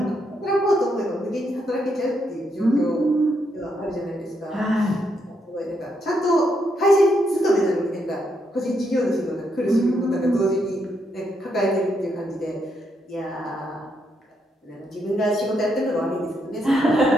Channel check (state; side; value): normal; both; correlation 0.78